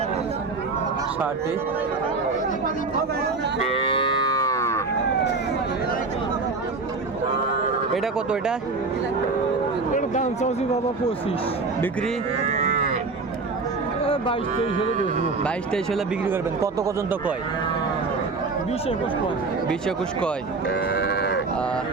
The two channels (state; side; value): quieter; left; 3.9 dB